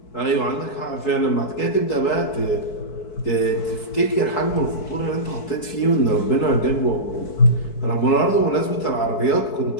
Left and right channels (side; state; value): right; late; 4.6 ms